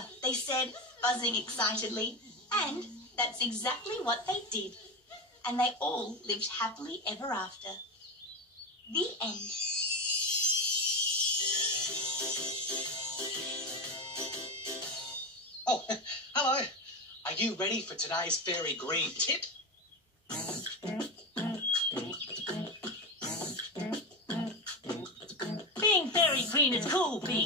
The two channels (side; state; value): both; normal; correlation 0.18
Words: they said, buzzing excitedly. And that's exactly what they did. And they all lived happily ever after. The end. Oh, hello. Are you ready for today's fairy green tip? Being fairy green is cool,